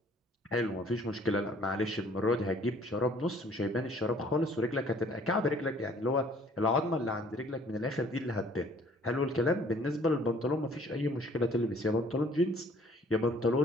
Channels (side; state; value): both; normal; correlation 0.57